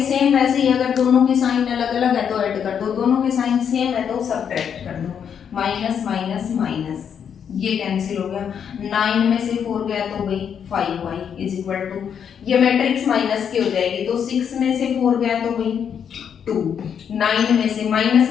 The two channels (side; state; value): right; quieter; 7.9 dB